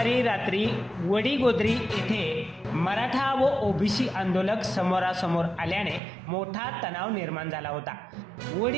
रात्री वडीगोद्री येथे मराठा व ओबीसी आंदोलक समोरासमोर आल्याने मोठा तणाव निर्माण झाला होता.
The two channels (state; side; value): drops out; left; at 6.0 s